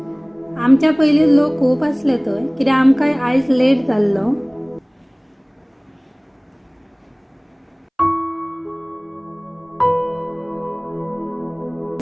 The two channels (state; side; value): identical; both; correlation 1.00